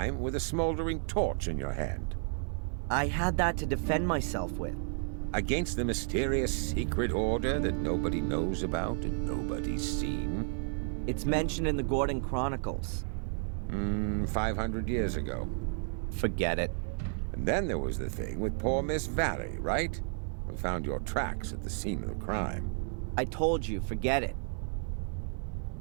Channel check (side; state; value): left; silent; 55 dB below the other